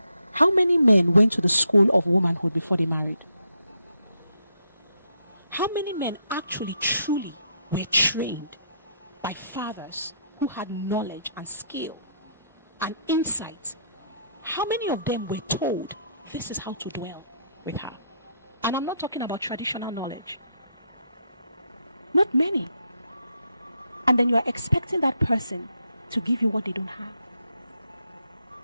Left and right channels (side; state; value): both; inverted; correlation -0.75